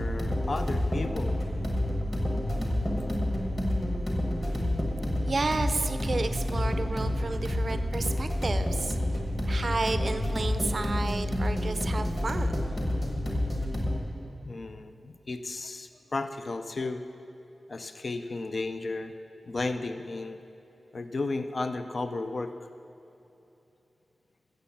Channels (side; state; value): both; normal; correlation 0.95